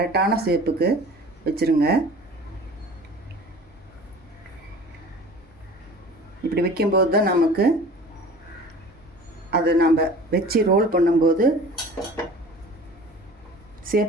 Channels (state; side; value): normal; both; correlation 0.43